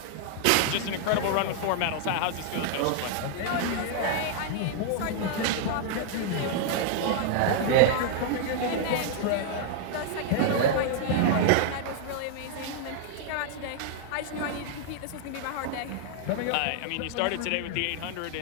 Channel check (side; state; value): both; different; correlation 0.00